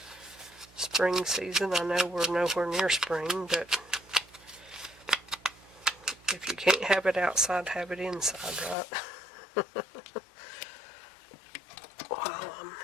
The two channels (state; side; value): drops out; right; at 8.8 s